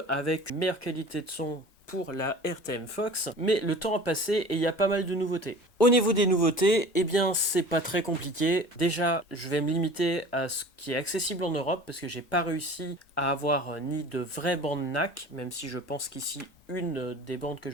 avec une meilleure qualité de son pour la RTM Fox, mais le temps a passé et il y a pas mal de nouveautés. Au niveau des nouveautés, c'est pas très compliqué. Déjà, je vais me limiter à ce qui est accessible en Europe parce que j'ai pas réussi à avoir ni de vraies bandes NAC, même si je pense qu'ici une des bandes que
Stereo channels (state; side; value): normal; both; correlation 0.41